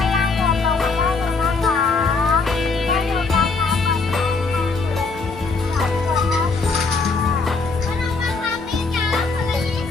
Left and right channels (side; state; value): right; quieter; 4.2 dB